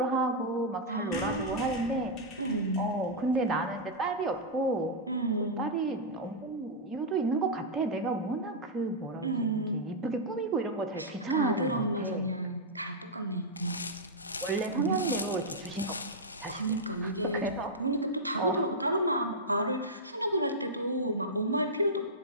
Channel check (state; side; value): normal; both; correlation -0.08